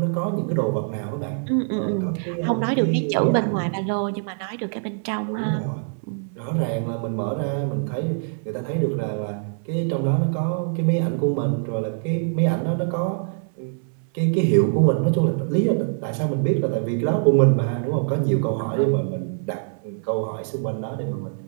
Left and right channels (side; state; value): left; silent; 58 dB below the other